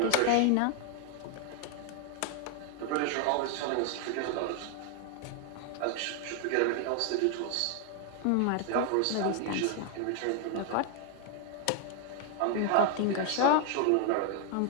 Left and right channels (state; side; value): different; both; correlation 0.00